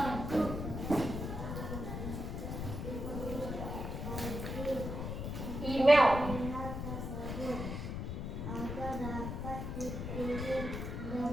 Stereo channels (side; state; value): left; noise; rumble, 4 dB below the sound